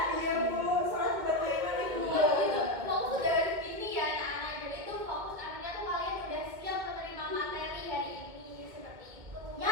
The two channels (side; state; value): left; late; 2.2 ms